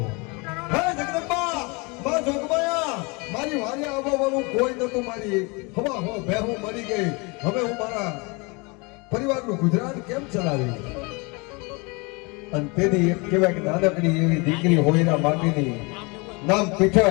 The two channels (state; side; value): quieter; right; 28.7 dB